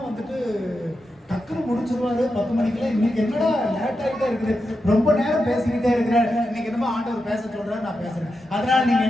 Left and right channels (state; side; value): normal; both; correlation 0.88